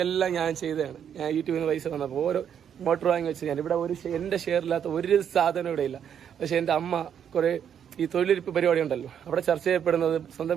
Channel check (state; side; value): quieter; left; 8.6 dB